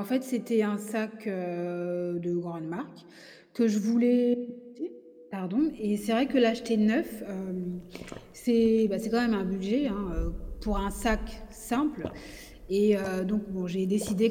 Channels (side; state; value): both; identical; correlation 1.00